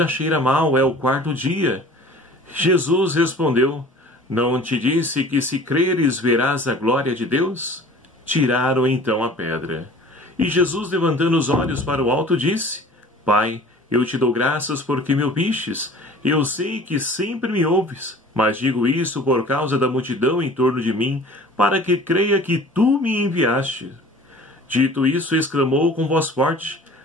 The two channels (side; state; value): both; normal; correlation 0.46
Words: cheira mal, é o 4º dia. Jesus respondeu: não te disse que se creres verás a glória de Deus? Tiraram então a pedra. E Jesus, levantando os olhos para o alto, disse: Pai, eu te dou graças porque me ouvistes. Eu sei que sempre me ouves, mas digo isso por causa da multidão em torno de mim, para que creia que tu me enviaste. Dito isso, exclamou com voz forte: